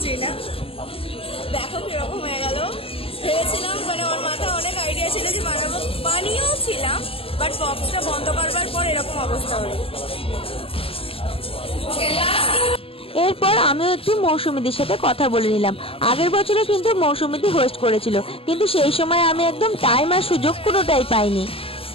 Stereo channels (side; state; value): right; late; 0.27 ms